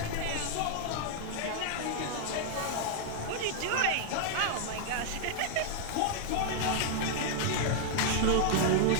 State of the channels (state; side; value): different; both; correlation -0.01